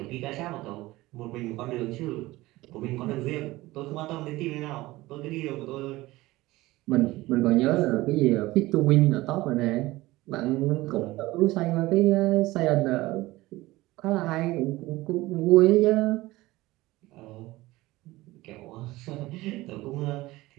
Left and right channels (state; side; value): quieter; left; 18.9 dB